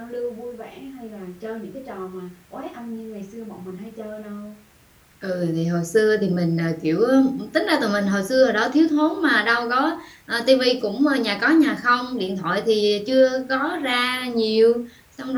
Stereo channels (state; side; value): identical; both; correlation 1.00